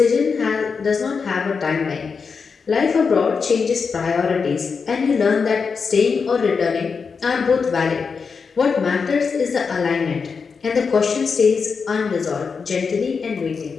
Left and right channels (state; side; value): quieter; right; 5.4 dB